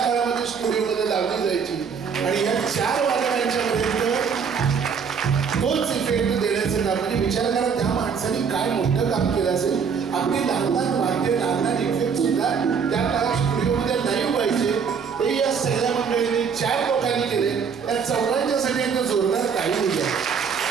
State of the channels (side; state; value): left; quieter; 6.3 dB